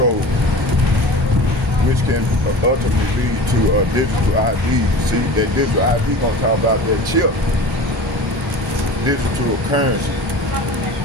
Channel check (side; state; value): both; normal; correlation 0.36